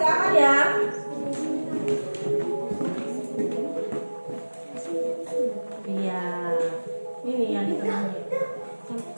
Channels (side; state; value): both; inverted; correlation -1.00